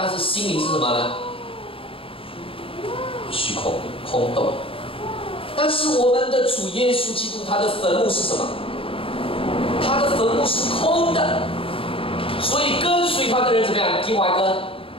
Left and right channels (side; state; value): right; late; 0.26 ms